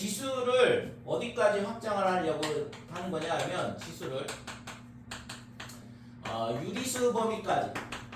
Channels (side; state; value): both; identical; correlation 1.00